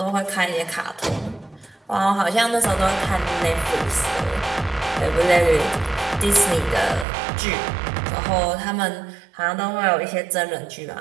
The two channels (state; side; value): drops out; left; at 7.1 s